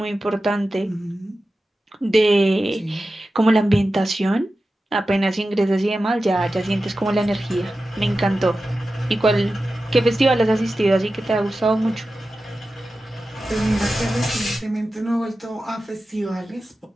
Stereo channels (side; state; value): both; normal; correlation 0.93